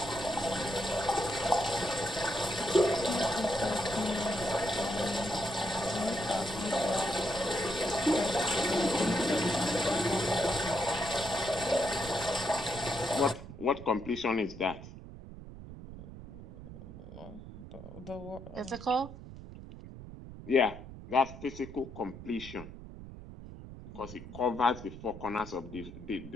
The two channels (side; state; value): right; noise; rumble, 13 dB below the sound